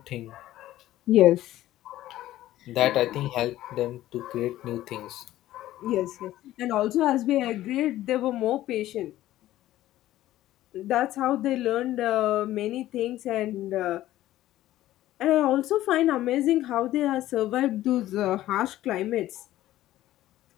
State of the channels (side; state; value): right; quieter; 14.5 dB